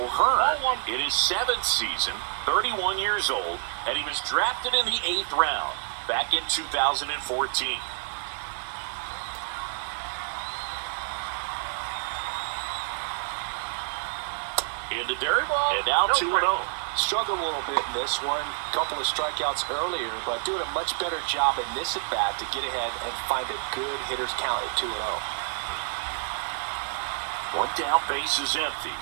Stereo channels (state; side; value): silent; left; digital silence